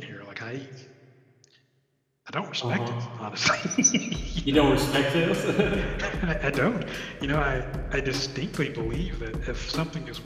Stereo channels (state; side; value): identical; both; correlation 1.00